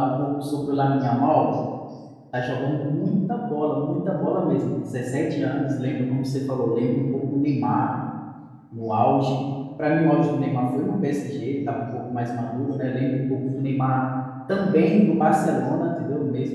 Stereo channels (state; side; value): identical; both; correlation 1.00